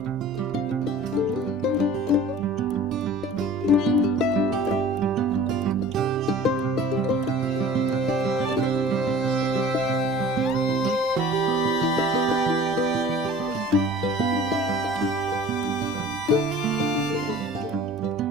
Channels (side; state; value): both; normal; correlation 0.45